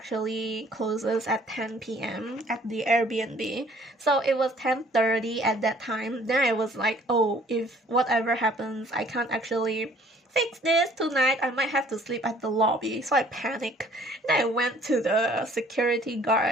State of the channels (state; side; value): normal; both; correlation 0.57